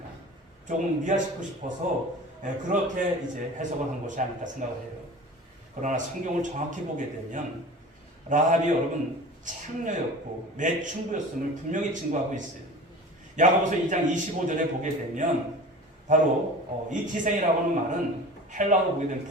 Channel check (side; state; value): both; normal; correlation 0.38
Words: 조금 미화시키고 싶어서 그렇게 이제 해석을 한 것이 아닐까 생각을 해요. 그러나 성경을 정확히 보게 되면 라합이 여러분 창녀였고 매춘부였음을 분명히 증거하고 있어요. 야고보서 2장 25절에 보게 되면 바로 이 기생이라고 하는 말은 헬라어로 보게 되면